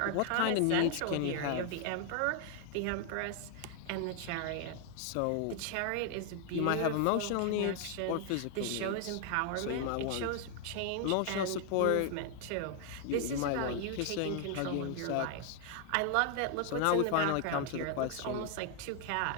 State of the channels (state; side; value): different; both; correlation 0.00